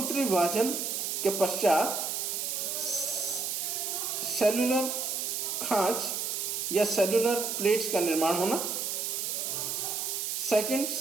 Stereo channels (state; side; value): noise; right; hiss, 2 dB below the sound